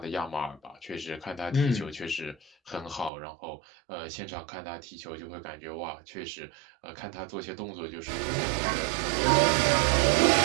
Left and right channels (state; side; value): drops out; left; at 3.1 s